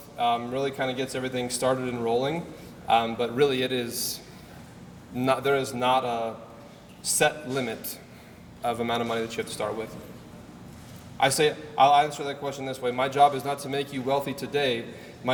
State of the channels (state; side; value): identical; both; correlation 1.00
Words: really kind of gets everything started and rolling. But really it is not, there is not a set limit of amount of money that you have to start with. I'll answer that question this way. My job is not to make you wealthy today.